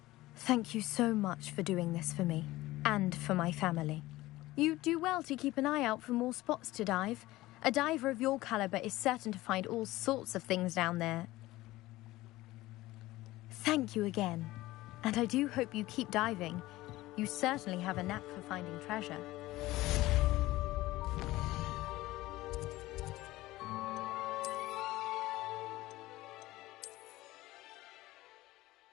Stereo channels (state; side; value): quieter; right; 17.8 dB